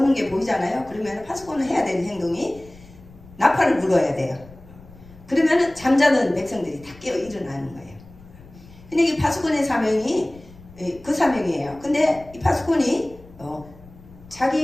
게 보이잖아요. 그러면 파수꾼은 해야 되는 행동이 나팔을 불어야 돼요. 그러면 잠자는 백성들이 다 깨어 일어나는 거예요. 근데 이 파수꾼의 사명이 그 사명이에요. 근데 이 파수꾼이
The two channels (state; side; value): noise; left; rumble, 22 dB below the sound